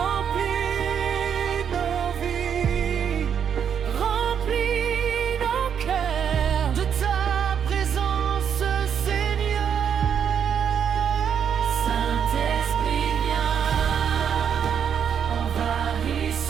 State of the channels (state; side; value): quieter; left; 7.9 dB